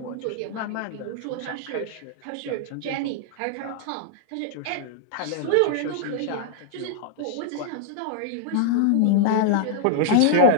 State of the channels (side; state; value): both; different; correlation -0.01